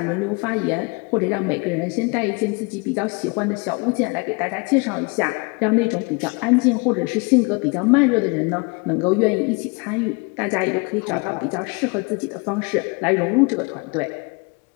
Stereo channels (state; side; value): quieter; right; 30.9 dB